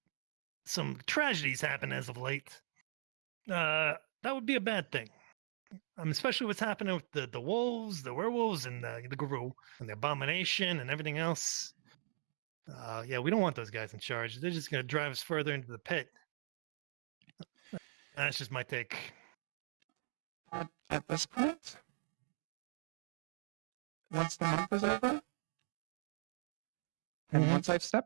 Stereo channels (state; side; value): silent; left; digital silence